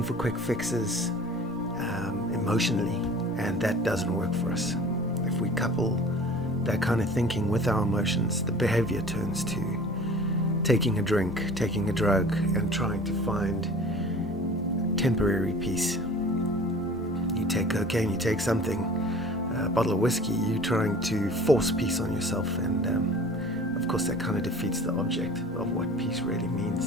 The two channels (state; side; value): normal; both; correlation 0.44